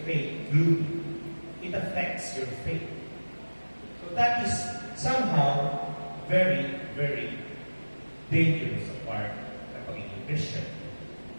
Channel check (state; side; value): inverted; both; correlation -1.00